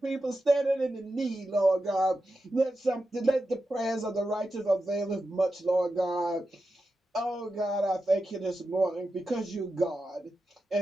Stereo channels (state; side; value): normal; both; correlation 0.90